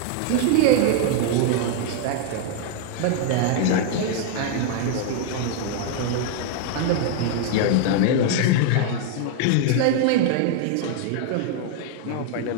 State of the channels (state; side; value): different; both; correlation 0.00